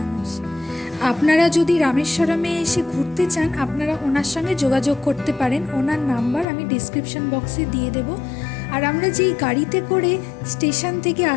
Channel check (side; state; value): right; drops out; at 6.5 s